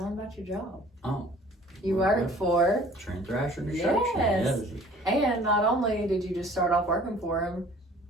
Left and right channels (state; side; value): normal; both; correlation 0.51